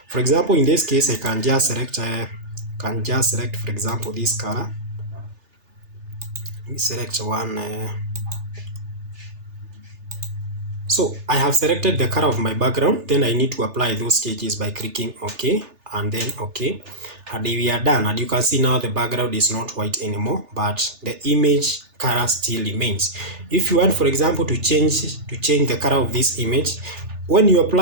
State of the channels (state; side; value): late; left; 3.3 ms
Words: For example, in this case, I can just select for example, this color. Let me select one. So I have selected the color of my background. Then I need to apply those changes by clicking OK and then OK. And we are done, and you can see now the background is not white anymore, but the image color still remains. If you want, for example, to change the color of this image, when you